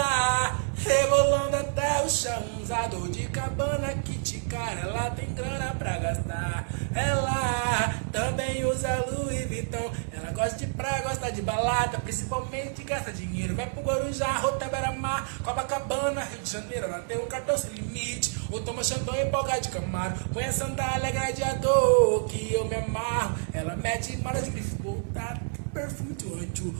rebolando até o chão. Usador de cabana, kit cara, ela tem grana pra gastar. Ela também usa Louis Vuitton. Ela gosta de praia, gosta de balada, principalmente gasta dinheiro. Vai pro Guarujá, Rota Beira-Mar, Copacabana, Rio de Janeiro. Ela tem um cartão sem limite, ou toma champanhe e boga de Camaro. Põe a sandália gladiador, que eu me amarro. Ela mete para de grife, tá perfume de anjo.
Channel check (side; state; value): left; silent; digital silence